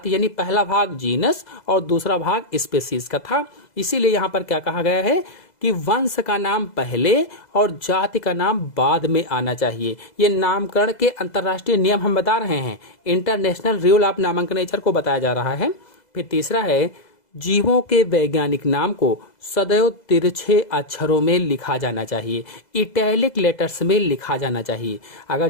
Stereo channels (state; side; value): late; right; 2.0 ms